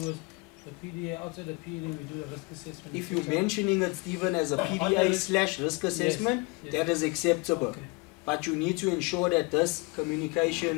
is the PDA, outside the PDA we do a risk assessment. If you're mentioning it, Stephen, as a PDA / risk assessment, yes. that is acceptable. Okay. But you need to ensure that this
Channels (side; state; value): right; quieter; 27.6 dB